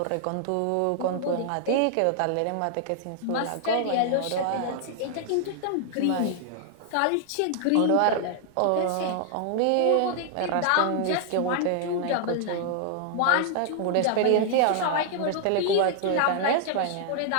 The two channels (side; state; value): both; different; correlation 0.00